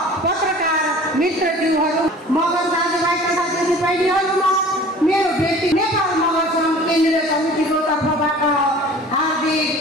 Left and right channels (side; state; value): both; normal; correlation 0.45